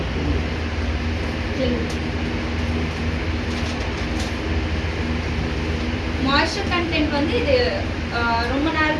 மாய்ஸ்சர் கண்டென்ட் வந்து இது ரொம்ப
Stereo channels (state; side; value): identical; both; correlation 1.00